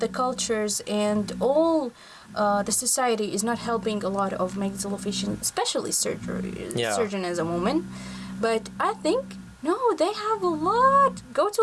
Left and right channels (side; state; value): both; identical; correlation 1.00